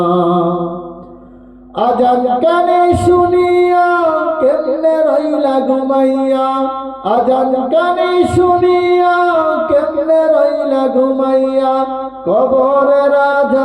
আজান কানে শুনিয়া কেমনে রইলা ঘুমাইয়া। আজান কানে শুনিয়া কেমনে রইলা ঘুমাইয়া। কবরের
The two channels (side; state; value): both; identical; correlation 1.00